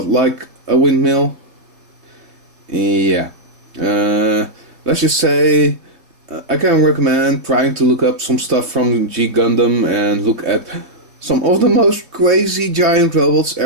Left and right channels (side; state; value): left; late; 3.2 ms